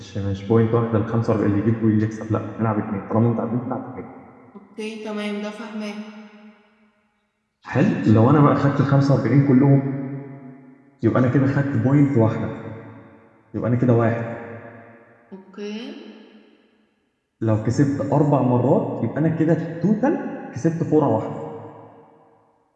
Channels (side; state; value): both; identical; correlation 1.00